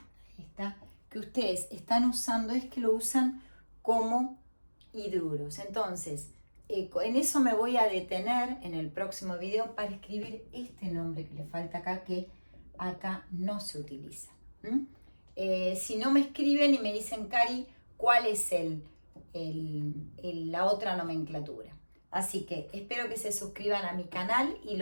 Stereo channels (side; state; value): both; inverted; correlation -1.00